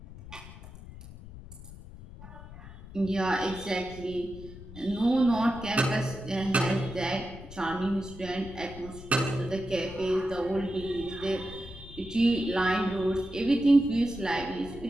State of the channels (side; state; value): left; noise; rumble, 15 dB below the sound